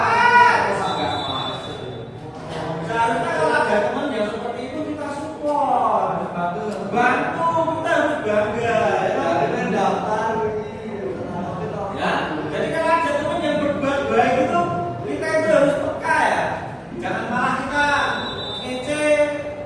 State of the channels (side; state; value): both; identical; correlation 1.00